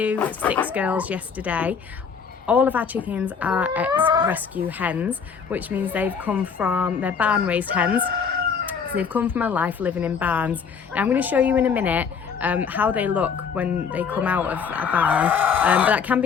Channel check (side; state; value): right; quieter; 6.3 dB